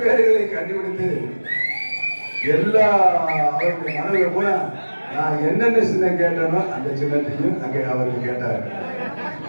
கண்டுபிடித்து எல்லா அவருடைய மனதில் போல நான் என்னென்ன சின்னம் கேட்டனோ அந்த சின்னத்தையும் அங்கே அவர்கள் கேட்டார்கள்.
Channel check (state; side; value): inverted; both; correlation -1.00